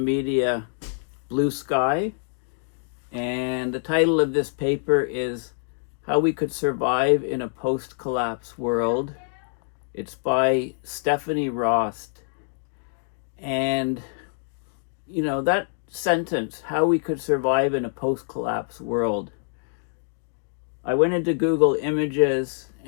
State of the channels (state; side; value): silent; right; digital silence